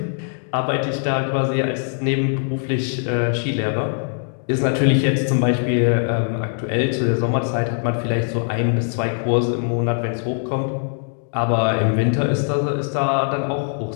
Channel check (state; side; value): silent; right; 65 dB below the other